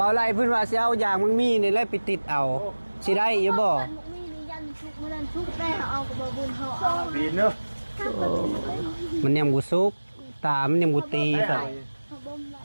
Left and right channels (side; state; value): both; inverted; correlation -1.00